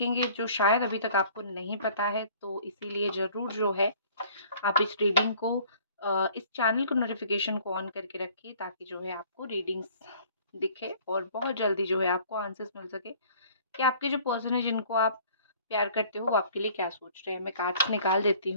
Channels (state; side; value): inverted; both; correlation -0.53